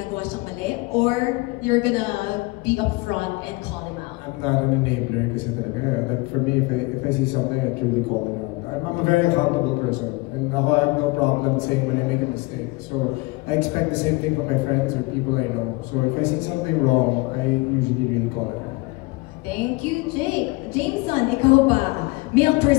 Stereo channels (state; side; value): quieter; right; 24.1 dB